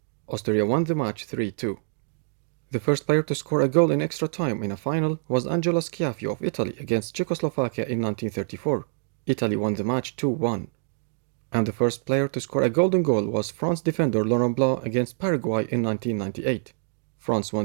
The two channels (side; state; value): left; silent; digital silence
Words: Austria won the match 3-2. The first player to score a goal in extra time in a final was Angelo Schiaffio of Italy against Czechoslovakia in 1934. Italy won the match 2-1. And the first player to score a golden goal was France defender Laurent Blanc against Paraguay in 1998. France